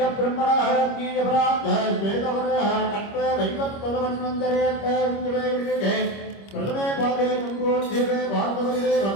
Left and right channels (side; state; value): right; late; 25 ms